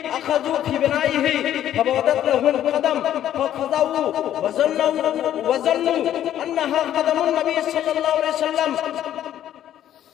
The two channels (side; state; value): right; quieter; 11.4 dB